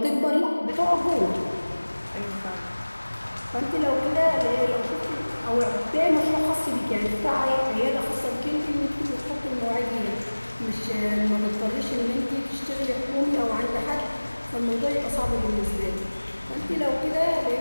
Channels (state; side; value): inverted; both; correlation -1.00